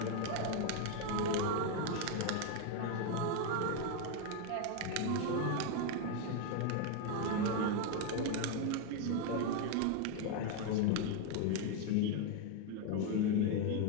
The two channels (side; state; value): both; different; correlation 0.01